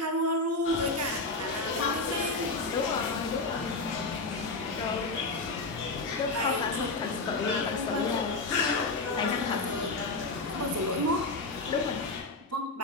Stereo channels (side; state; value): right; quieter; 3.3 dB